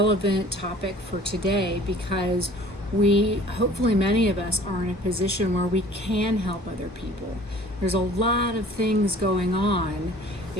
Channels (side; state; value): both; normal; correlation 0.50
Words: topic for today because hopefully many of us are in a position where we can help other people. There's a lot of things going on.